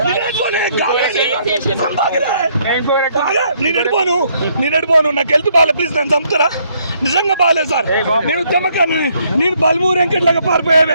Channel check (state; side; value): inverted; both; correlation -0.69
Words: నేను ఎడిపోను, నాకు హెల్త్ బాగాలేదు, ప్లీజ్ నన్ను చంపుతారా? నిజంగా బాగాలేదు సార్, నేను ఉద్యమకాన్ని, నేను బల్మూరు వెంకట్లాగా